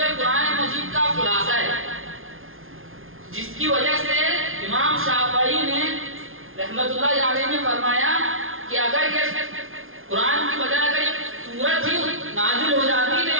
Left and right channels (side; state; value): left; late; 0.60 ms